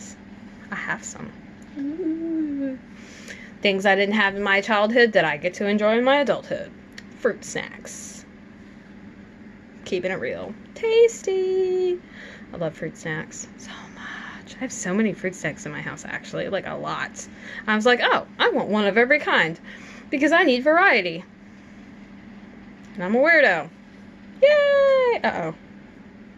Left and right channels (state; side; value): identical; both; correlation 1.00